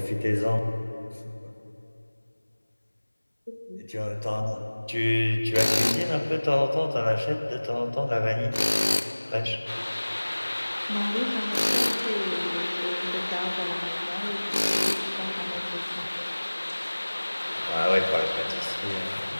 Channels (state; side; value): inverted; both; correlation -1.00